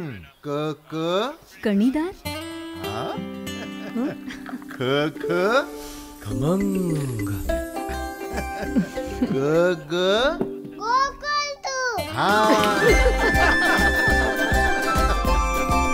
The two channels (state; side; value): identical; both; correlation 1.00